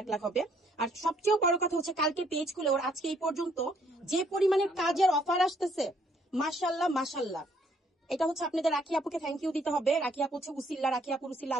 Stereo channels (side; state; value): both; normal; correlation 0.66